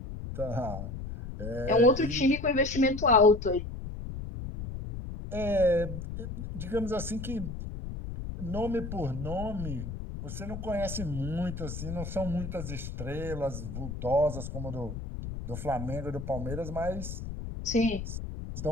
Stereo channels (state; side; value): noise; left; rumble, 7 dB below the sound